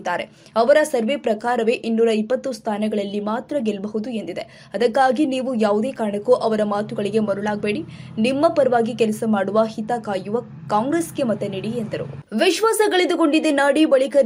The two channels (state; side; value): identical; both; correlation 1.00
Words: ಅವರ ಸರ್ವೆ ಪ್ರಕಾರವೇ 220 ಸ್ಥಾನಗಳಲ್ಲಿ ಮಾತ್ರ ಗೆಲ್ಲಬಹುದು ಎಂದಿದೆ. ಅದಕ್ಕಾಗಿ ನೀವು ಯಾವುದೇ ಕಾರಣಕ್ಕೂ ಅವರ ಮಾತುಗಳಿಗೆ ಮರುಳಾಗಬೇಡಿ. ನಿಮ್ಮ ಪರವಾಗಿ ಕೆಲಸ ಮಾಡುವ, ಹಿತ ಕಾಯುವ ಕಾಂಗ್ರೆಸ್ಗೆ ಮತ ನೀಡಿ ಎಂದರು. ವಿಶ್ವಾಸ ಕಳೆದುಕೊಂಡಿದ್ದ ನಾಡಿ